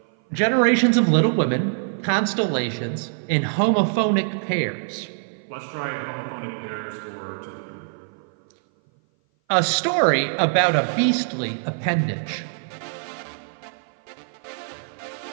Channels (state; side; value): silent; left; 57 dB below the other